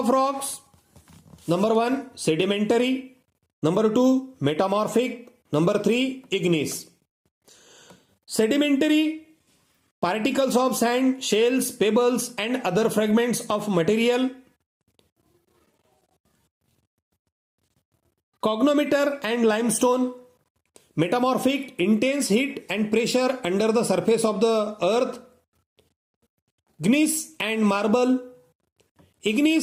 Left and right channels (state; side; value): identical; both; correlation 1.00